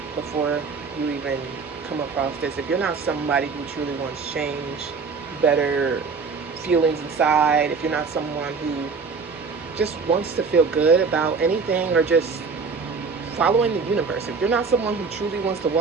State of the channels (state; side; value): quieter; left; 5.0 dB